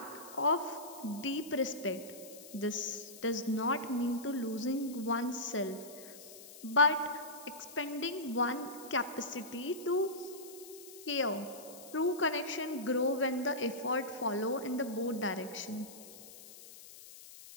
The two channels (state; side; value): noise; left; hiss, 16 dB below the sound